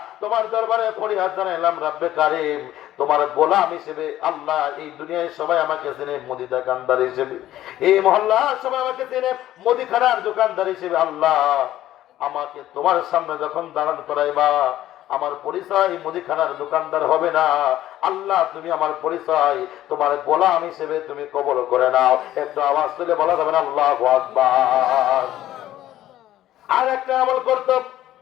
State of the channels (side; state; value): right; quieter; 13.6 dB